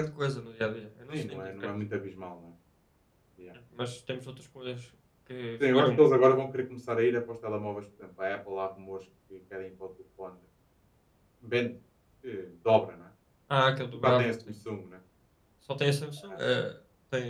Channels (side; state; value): both; identical; correlation 1.00